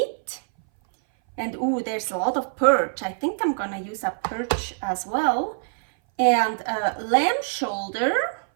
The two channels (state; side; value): silent; left; 59 dB below the other